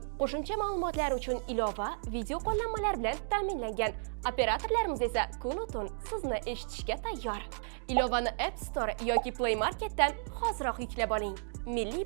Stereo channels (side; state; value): left; silent; digital silence